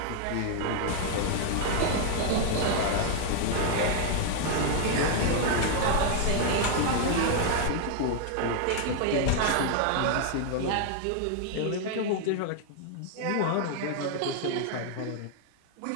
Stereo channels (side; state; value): both; different; correlation 0.00